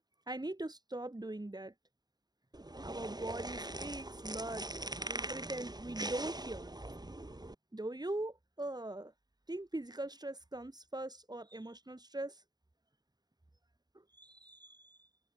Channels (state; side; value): late; left; 0.20 ms